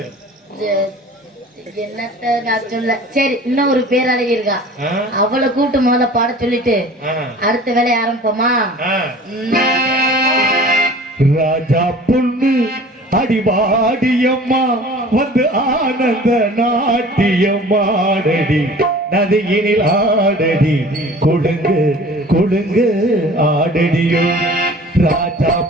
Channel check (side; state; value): both; normal; correlation 0.45